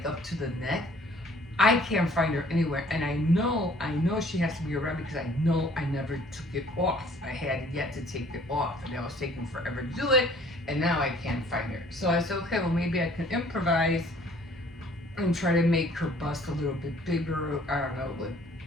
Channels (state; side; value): normal; both; correlation 0.56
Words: up to the neck. I can't find her anywhere, and I know she has to be around because I know I never took it off. I had yet to take it off, and I was taking forever to do it, and now I can't find her. So I said, okay, well maybe I can improvise and try to make her bust a little bit bigger. I don't know, with